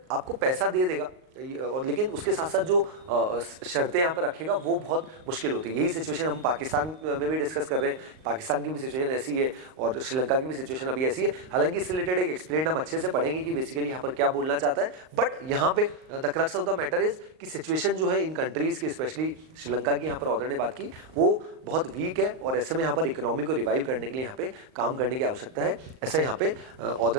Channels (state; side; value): late; left; 38 ms